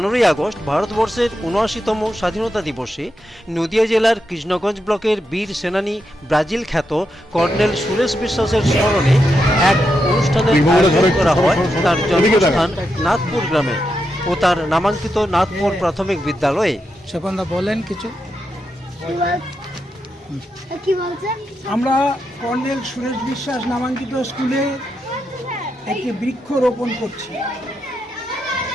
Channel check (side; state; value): both; normal; correlation 0.85